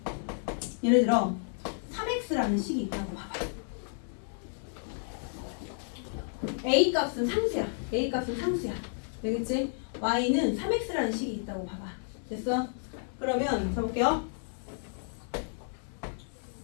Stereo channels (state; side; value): silent; right; 57 dB below the other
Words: 예를 들어 3x라는 식이 있다고 봐봐. a 값은 상수야. 되겠지? y는 3x라는 식이 있다고 봐봐. 됐어? 그러면 해볼게요.